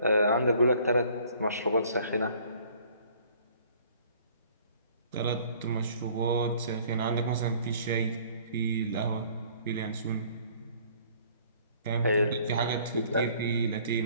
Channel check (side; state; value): both; inverted; correlation -0.56